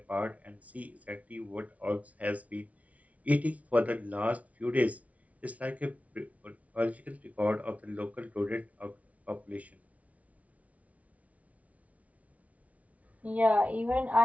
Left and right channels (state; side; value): late; left; 0.068 ms